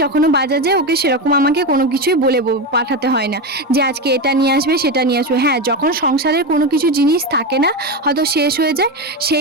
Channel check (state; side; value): normal; both; correlation 0.15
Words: যখনও বাজার যায়, ওকে সেরকম আমাকে কোনো কিছুই বলে পাঠাতে হয় না যে আজকে এটা নিয়ে আসবে সেটা নিয়ে আসবে। হ্যাঁ, যখন সংসারের কোনো কিছু জিনিস থাকে না, হয়তো শেষ হয়ে যায়,